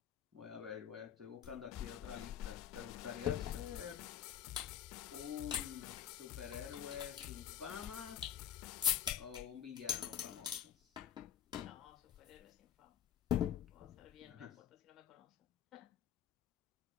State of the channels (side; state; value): right; quieter; 9.2 dB